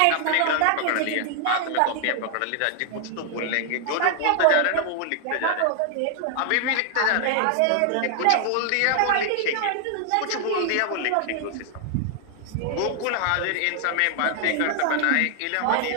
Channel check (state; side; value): different; both; correlation 0.00